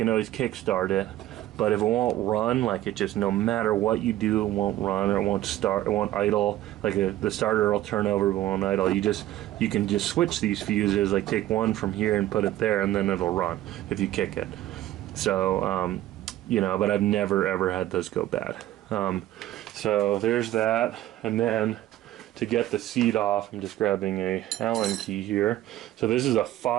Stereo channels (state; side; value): quieter; left; 14.3 dB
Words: always kick start it. But if it won't run, like, it just, no matter what you do, it won't run, or it won't start, it won't idle. Like the starter will turn over but won't idle. You can just switch these fuses, like take one from here and put it there, and then it'll run if you kick it. So you know, but I've never ever had those go bad. So there's that. And then to get the seat off, I'm just grabbing a Allen key here. So this is a